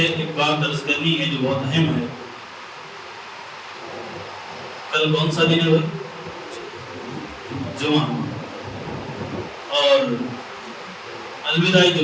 ایک بات عرض کرنی ہے جو بہت اہم ہے۔ کل کون سا دن ہے بھائی؟ جمعہ، اور الوداعی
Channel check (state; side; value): identical; both; correlation 1.00